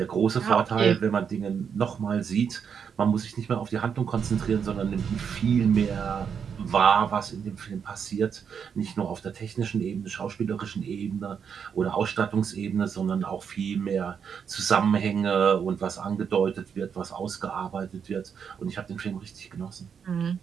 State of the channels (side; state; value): left; quieter; 7.1 dB